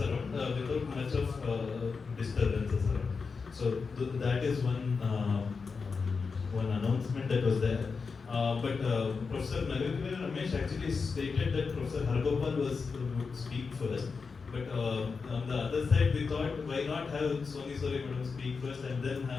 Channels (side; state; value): right; quieter; 5.0 dB